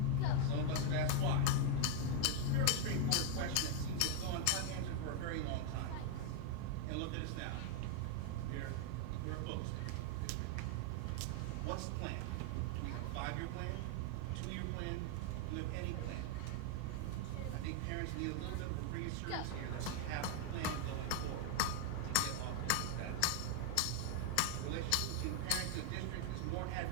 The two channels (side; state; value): both; different; correlation 0.00